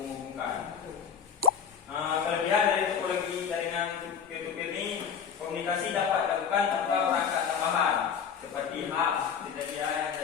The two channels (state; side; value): quieter; right; 7.2 dB